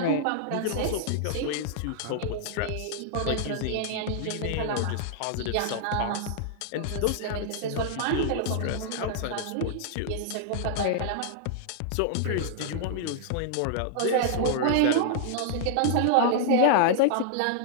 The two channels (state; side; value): different; both; correlation -0.01